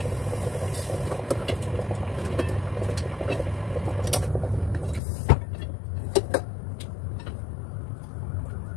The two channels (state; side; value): drops out; right; at 5.0 s